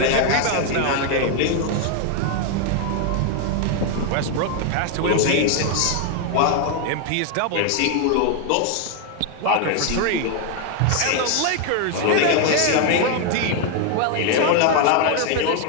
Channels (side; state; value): both; different; correlation 0.01